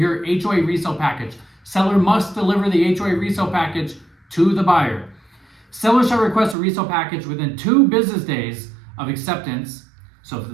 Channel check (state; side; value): drops out; left; at 6.6 s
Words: HOA resale package. Seller must deliver the HOA resale package to the buyer. Seller shall request a resale package within 2 business days of acceptance. So